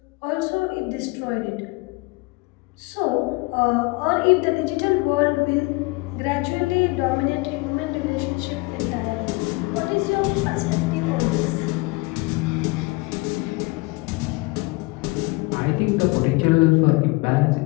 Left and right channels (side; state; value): right; quieter; 24.7 dB